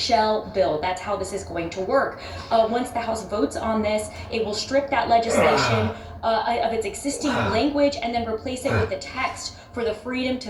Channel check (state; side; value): identical; both; correlation 1.00